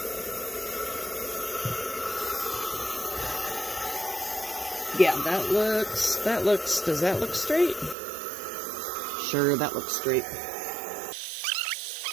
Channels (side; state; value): left; drops out; at 8.0 s